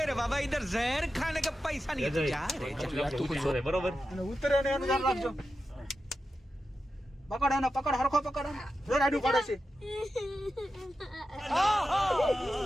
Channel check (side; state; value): both; normal; correlation 0.90